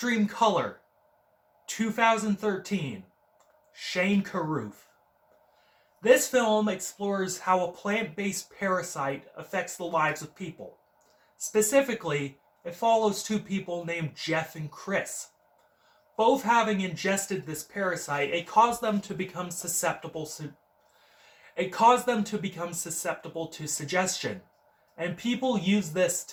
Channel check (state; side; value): identical; both; correlation 1.00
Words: Color, 2013, Shane Carruth. This film explores how a plant-based parasite affects the lives of people. Specifically, it follows two people named Jeff and Chris. Both having ingested this parasite, it caused them to become susceptible to suggestion, and people use this